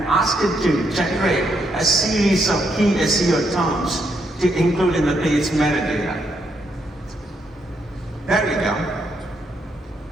ask it to generate a series of key SEO terms to include in the page metadata. There we go.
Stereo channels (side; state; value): both; normal; correlation 0.77